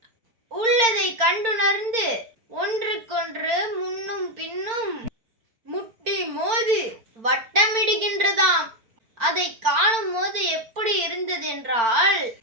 உள்ளதை கண்டுணர்ந்து ஒன்றுக்கொன்று முன்னும் பின்னும் முட்டி மோதி வட்டமிடுகின்றதாம். அதை காணும் போது எப்படி இருந்தது என்றால்,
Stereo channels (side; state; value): left; late; 4.4 ms